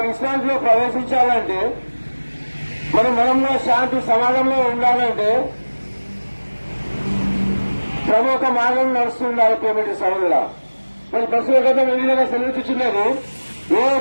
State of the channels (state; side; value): inverted; both; correlation -1.00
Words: విశ్రాంతిలో ప్రవేశించాలంటే మనంలో శాంతి సమాజంలో ఉండాలంటే ప్రముఖ మార్గం నడుస్తుండాలి. పేమెంట్ సభల మరి ప్రస్తుత గతం ఏ విధంగా సెలవుచున్నది, ఏ